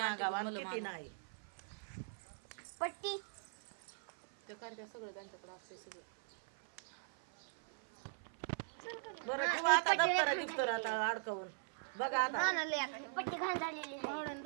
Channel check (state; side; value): silent; left; 51 dB below the other